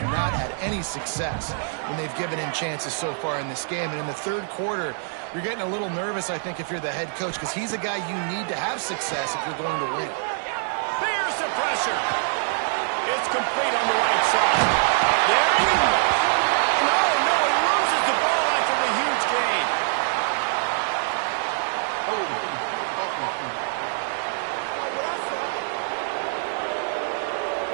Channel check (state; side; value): silent; left; digital silence